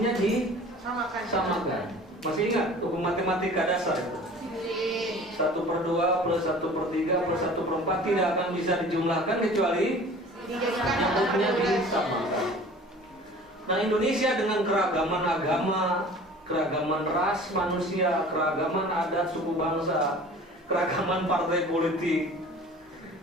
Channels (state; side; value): normal; both; correlation 0.45